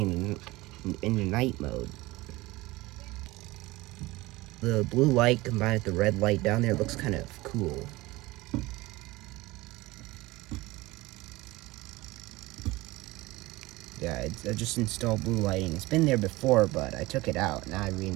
into night mode. The blue light combined with the red light down there looks kind of cool. Yeah, I just installed blue lighting. It's been there before, but I took it out. Now I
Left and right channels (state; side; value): quieter; left; 20.4 dB